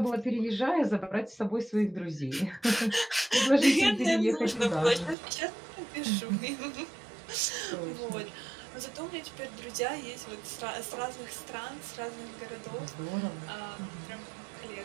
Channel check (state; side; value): drops out; left; at 5.2 s